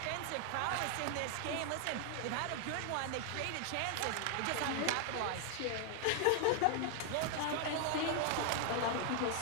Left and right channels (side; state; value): both; different; correlation 0.00